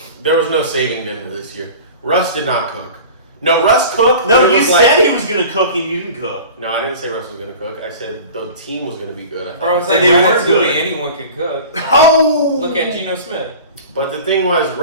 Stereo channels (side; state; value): both; inverted; correlation -0.39